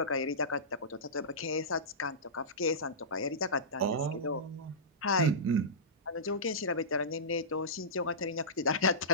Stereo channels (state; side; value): normal; both; correlation -0.19